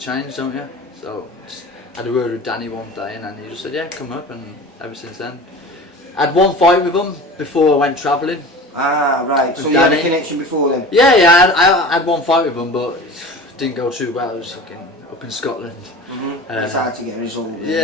don't you? So just had a word with Danny one day, and then he just said, yeah, come up, and ever since then. I had 1 fight with him before I went travelling. Ah, right. So you had a connection before then? Yeah, I had 1 fight with him, but it didn't go too well. It was fucking up in Scotland. It's hard to get a result.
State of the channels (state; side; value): normal; both; correlation 0.36